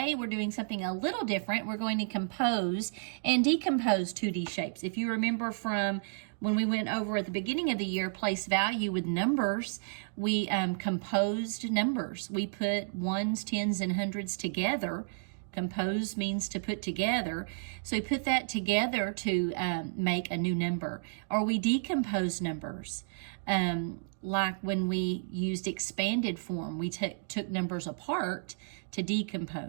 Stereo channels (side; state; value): left; silent; digital silence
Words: we're doing something a little different. We're going to compose and decompose 2D shapes. If you remember from when we went over at the beginning of the year, place value with numbers, we composed numbers. We put ones, tens, and hundreds together. Compose means to put together. So we put that together to make a new number. Or we decompose numbers. Like when we used expanded form, we took numbers apart to